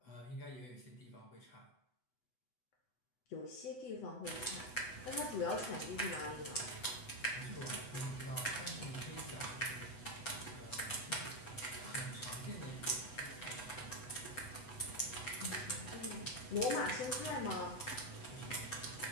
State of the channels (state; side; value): late; right; 8.0 ms